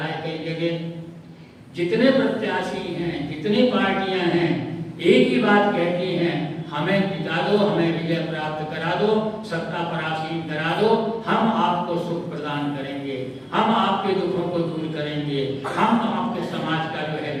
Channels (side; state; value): both; identical; correlation 1.00